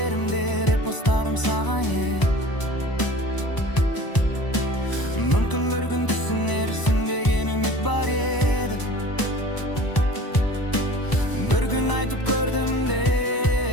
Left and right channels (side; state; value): right; late; 1.0 ms